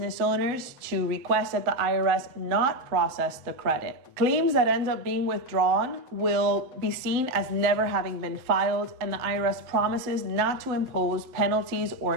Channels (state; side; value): late; left; 7.8 ms